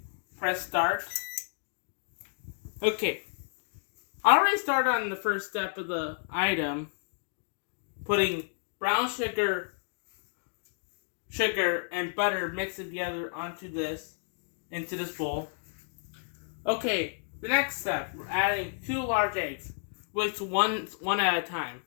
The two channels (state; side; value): silent; right; digital silence